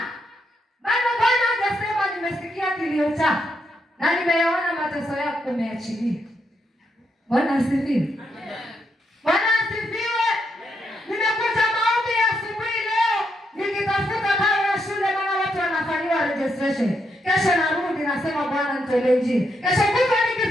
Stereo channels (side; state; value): both; normal; correlation 0.80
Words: bado Bwana hajasema nimesikia kilio chako na nimeyaona mateso yako, umeachilia. Bwana asifiwe. Bwana asifiwe. Nimekuja maombi ya asubuhi leo nikitafuta karo ya shule, maana watu wanafanyiwa registration. Kesho narudi nasema Bwana nitolee njia. Kesho kutwa